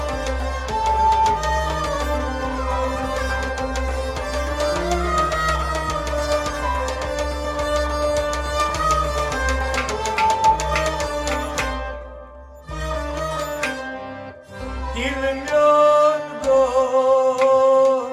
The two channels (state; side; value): identical; both; correlation 1.00